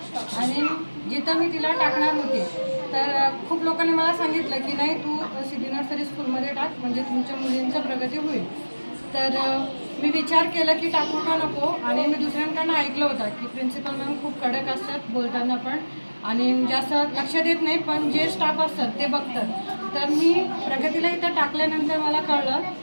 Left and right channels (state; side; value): inverted; both; correlation -1.00